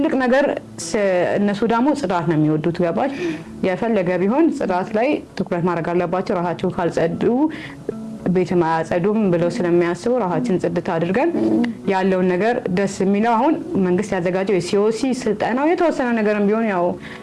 ነገር። እነሱ ደግሞ ጽዳት ነው የሚወዱት። ገባሽ? የፈለገ ቢሆን ጽዳት ላይ ትኩረት ማድረግ አለባቸው። ራሳቸው ካልጸዱ ቤት ማያጸዱም ብለው ስለሚያስቡ ራሳችን ጽድት አድርገን ያለውን ነገር ደስ የሚለው አሁን መንግስት ያዘጋጀው የሲኦሲ ስልጠናው የተወሰነ ነገርም ቢሆን ያው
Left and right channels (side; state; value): both; identical; correlation 1.00